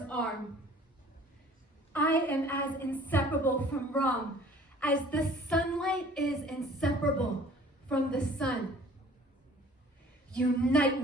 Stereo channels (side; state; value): both; normal; correlation 0.51